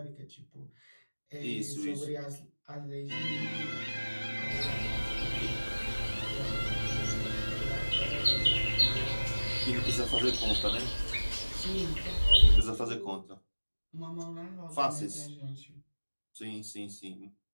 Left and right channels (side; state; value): both; inverted; correlation -1.00